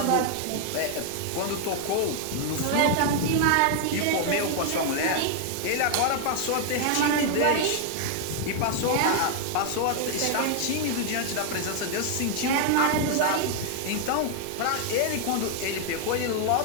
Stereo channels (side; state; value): both; different; correlation 0.00